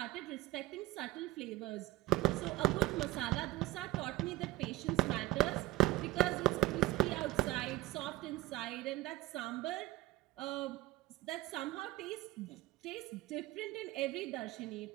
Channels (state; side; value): quieter; left; 17.9 dB